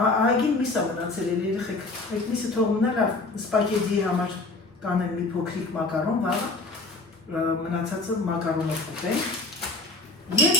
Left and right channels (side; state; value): right; quieter; 3.3 dB